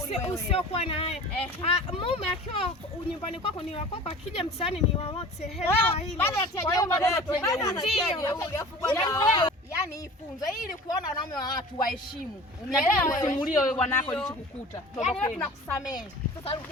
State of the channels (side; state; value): both; normal; correlation 0.41